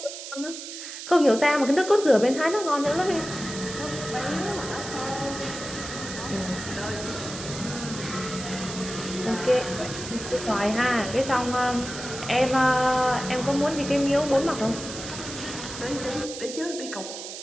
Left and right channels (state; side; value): noise; right; hiss, 9 dB below the sound